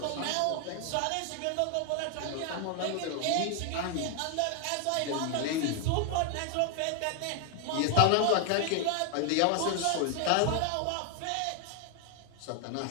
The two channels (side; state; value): both; different; correlation 0.00